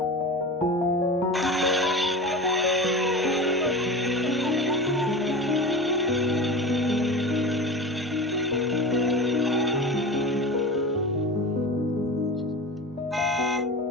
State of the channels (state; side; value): normal; both; correlation 0.30